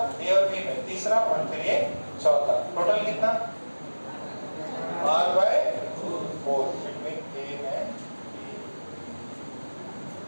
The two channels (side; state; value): both; inverted; correlation -1.00